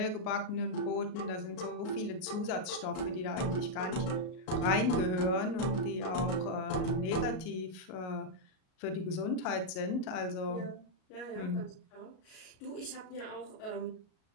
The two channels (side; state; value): right; late; 38 ms